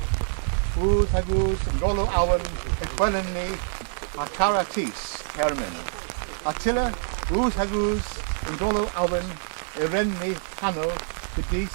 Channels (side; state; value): left; silent; digital silence